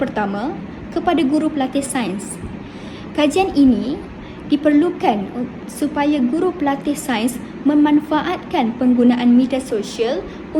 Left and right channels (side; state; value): both; identical; correlation 1.00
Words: kepada guru pelatih sains. Kajian ini diperlukan supaya guru pelatih sains memanfaatkan penggunaan media sosial